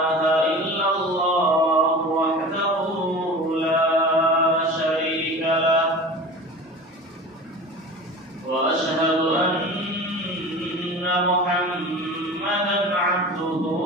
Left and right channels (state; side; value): normal; both; correlation 0.35